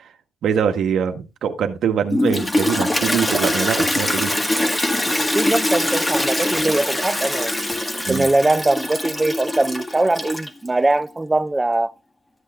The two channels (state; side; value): normal; both; correlation 0.91